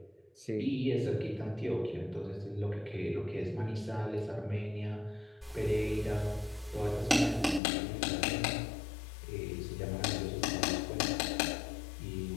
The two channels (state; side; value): drops out; right; at 7.6 s